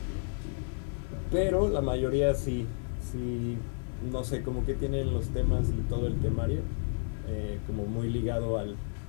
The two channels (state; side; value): silent; right; digital silence